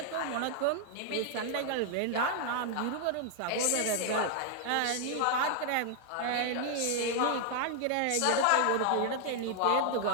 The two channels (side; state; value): both; different; correlation 0.00